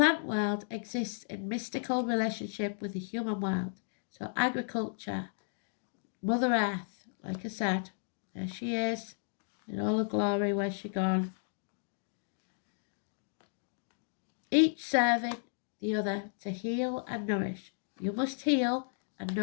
world exists in mystical relationship with the human world. So agriculture, Mother Earth, like I said, there she is, in all her glory. Where's she gone? Each serving the other to heal and nourish. You must heal and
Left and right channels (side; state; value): right; silent; digital silence